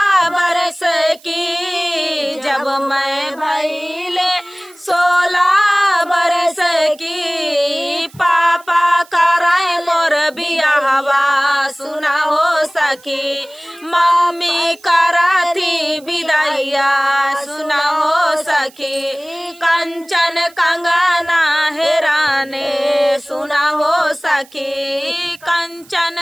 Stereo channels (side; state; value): right; noise; hiss, 26 dB below the sound